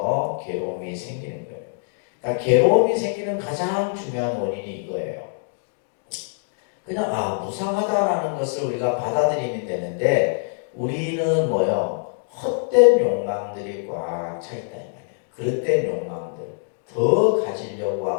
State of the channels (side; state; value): right; silent; digital silence